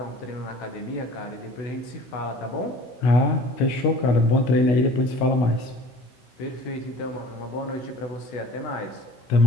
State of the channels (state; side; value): late; right; 16 ms